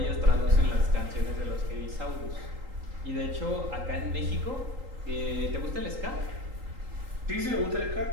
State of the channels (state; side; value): late; left; 3.8 ms